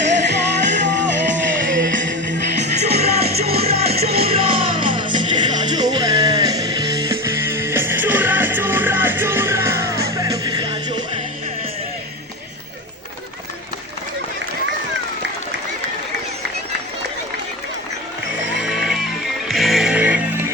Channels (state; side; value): normal; both; correlation 0.23